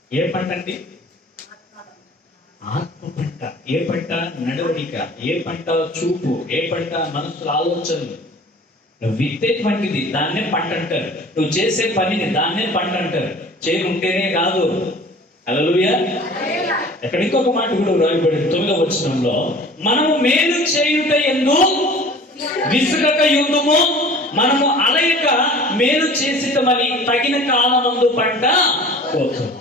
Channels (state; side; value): normal; both; correlation 0.45